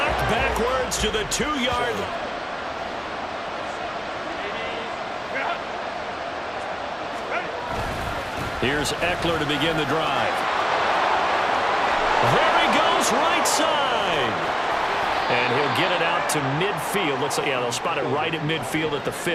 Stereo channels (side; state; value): both; identical; correlation 1.00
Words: backwards to the 2-yard line. Here's Eckler to begin the drive. There he goes, right side. And he'll get it out to midfield. Looks like, yeah, they'll spot it right at midfield at the